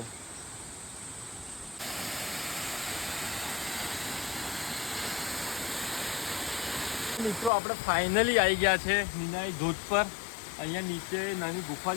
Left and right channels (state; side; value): drops out; right; at 7.5 s